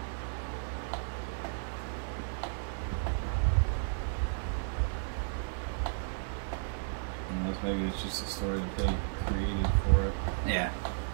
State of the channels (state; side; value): silent; left; digital silence